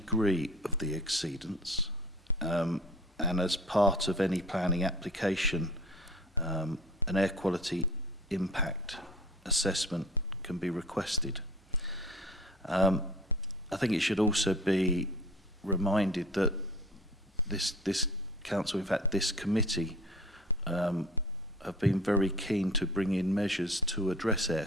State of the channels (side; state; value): both; normal; correlation 0.44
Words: of the exceedance. And as part of any planning application, an air quality impact assessment can be requested. I think it should also be reminded that this council, in fact this committee, have been very keen to bring in measures to address air